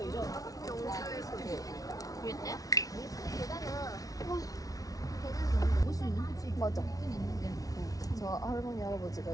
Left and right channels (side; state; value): right; late; 0.18 ms